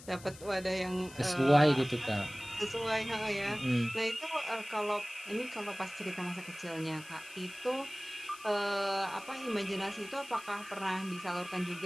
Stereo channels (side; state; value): left; noise; hiss, 18 dB below the sound